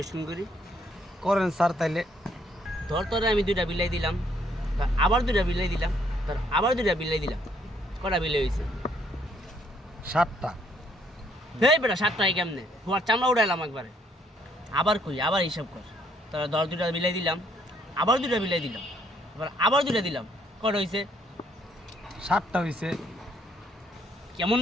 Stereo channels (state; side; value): normal; both; correlation 0.68